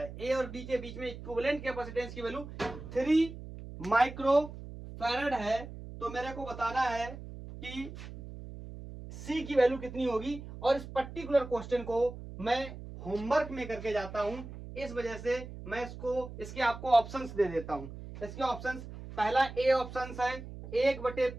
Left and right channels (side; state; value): right; noise; hum, 12 dB below the sound